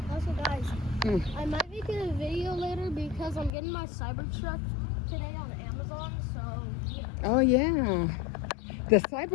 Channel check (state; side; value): drops out; right; at 3.5 s